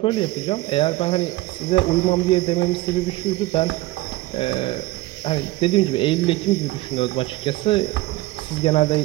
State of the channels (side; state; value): left; quieter; 18.5 dB